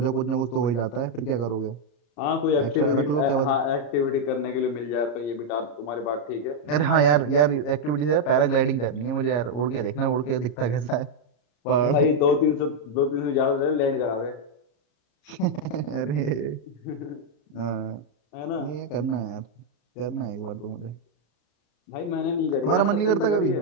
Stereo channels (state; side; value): late; right; 34 ms